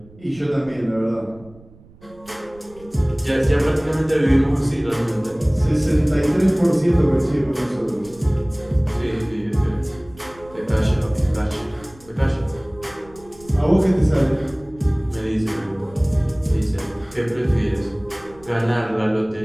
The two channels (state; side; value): noise; right; rumble, 24 dB below the sound